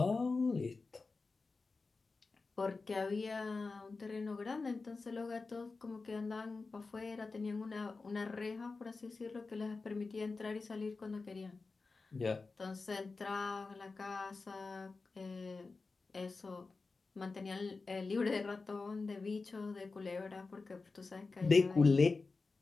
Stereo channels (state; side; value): quieter; right; 4.0 dB